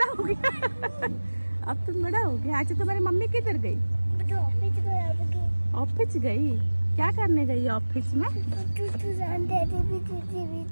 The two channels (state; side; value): inverted; both; correlation -1.00